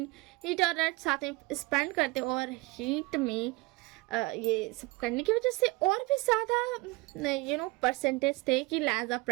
हीट और रट साथ में स्पेंड करते हैं और हीट में ये सब करने की वजह से और भी ज़्यादा परसेंटेज थे कि लैजा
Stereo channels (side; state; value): left; quieter; 23.5 dB